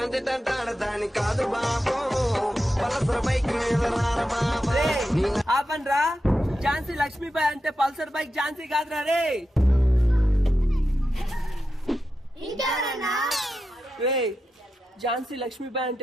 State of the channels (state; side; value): normal; both; correlation 0.89